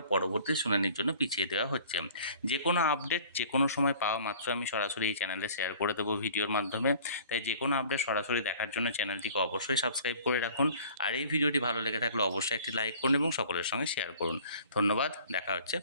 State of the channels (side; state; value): both; inverted; correlation -0.49